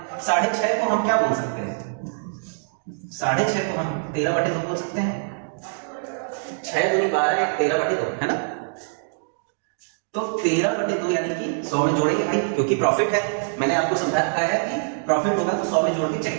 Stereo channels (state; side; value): silent; left; digital silence